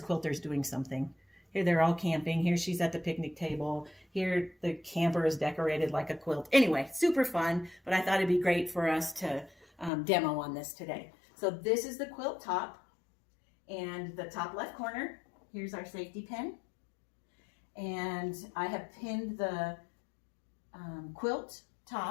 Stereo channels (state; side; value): drops out; right; at 9.9 s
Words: quilters doing something. Here they're all camping. Here she's at the picnic table. Here the camper is decorated like a quilt. Anyway, super fun, but I thought it'd be great for us to demo on this today. So this is the quilt top, and the top left corner, here's our safety pin. And I have pinned the quilt